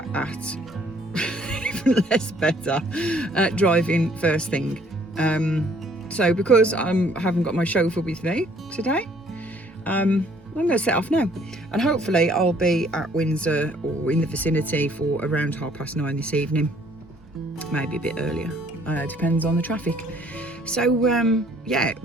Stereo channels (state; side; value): normal; both; correlation 0.61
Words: at driving first thing. So because I haven't got my chauffeur with me today, I'm going to set off now, and hopefully I'll be at Windsor or in the vicinity for around 9:30 this evening, maybe a bit earlier, depends on the traffic. So yeah,